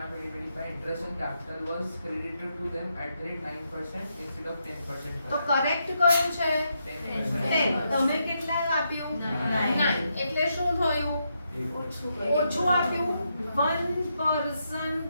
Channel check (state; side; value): inverted; both; correlation -0.81